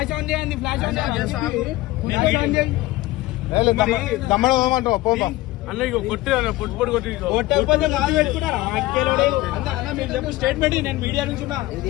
on చేయండి, ఫ్లాష్ ఆన్ చేయండి. తమ్ముడు పోమంటావు పోతా అన్న ఇక కొట్టి పొట్టు కొట్టి చెప్పు స్టేట్మెంట్. నేను మీడియా నుంచి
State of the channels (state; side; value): quieter; right; 18.3 dB